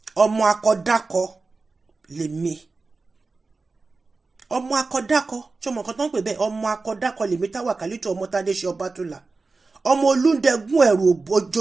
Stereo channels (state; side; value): quieter; left; 3.9 dB